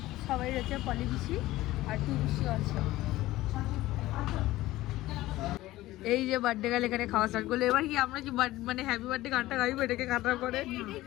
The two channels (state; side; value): quieter; right; 16.8 dB